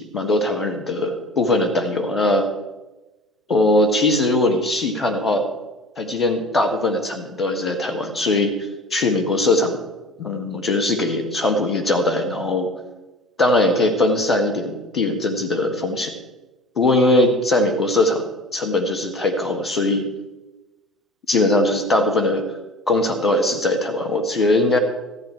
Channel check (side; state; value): both; normal; correlation 0.41